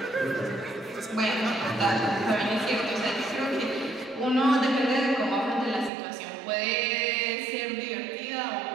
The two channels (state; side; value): drops out; left; at 5.9 s